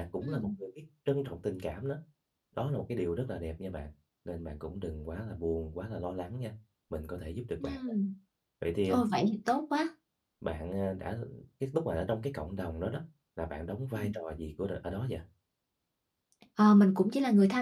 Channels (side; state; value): both; identical; correlation 1.00